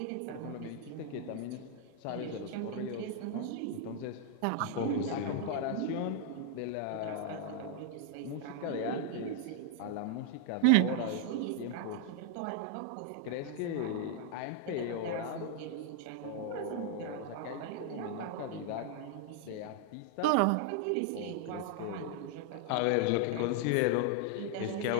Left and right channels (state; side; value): different; both; correlation 0.00